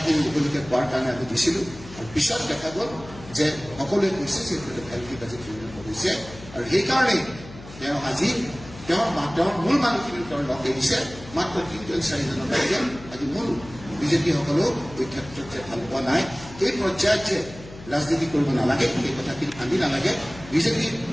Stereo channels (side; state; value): left; noise; hum, 16 dB below the sound